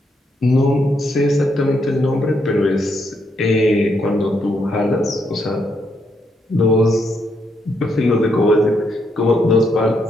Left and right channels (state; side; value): normal; both; correlation 0.77